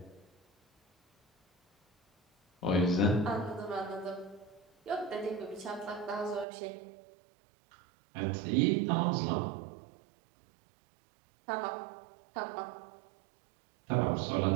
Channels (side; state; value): left; drops out; at 6.5 s